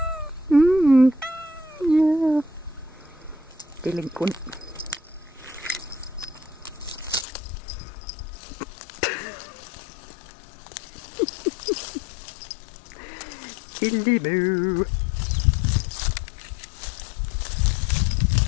Yeah. Delinquent. Silly moo.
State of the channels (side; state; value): right; drops out; at 7.2 s